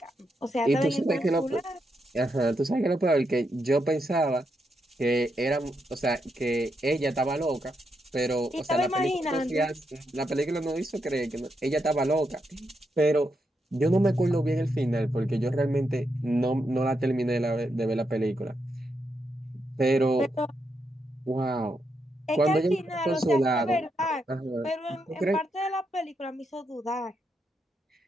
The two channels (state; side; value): normal; both; correlation 0.82